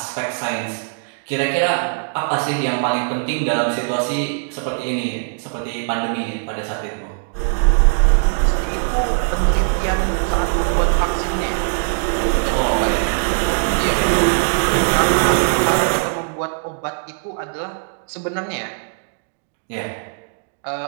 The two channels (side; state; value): left; silent; digital silence